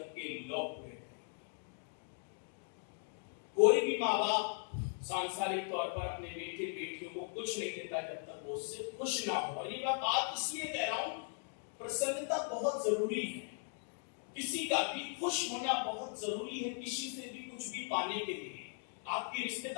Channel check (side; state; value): right; silent; 52 dB below the other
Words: के लोग पूरे। कोई भी माँ बाप सांसारिक तौर पर अपने बेटे बेटियों को कुछ नहीं देता जब तक वो उससे खुश ना हो। और ये मैं बात इसलिए कह रहा हूं, प्रसन्नता बहुत जरूरी है, किसी का भी खुश होना बहुत जरूरी है। किसी से भी कुछ भी पाने के लिए आपके